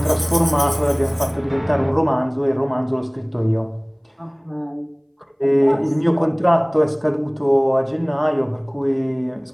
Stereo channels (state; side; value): identical; both; correlation 1.00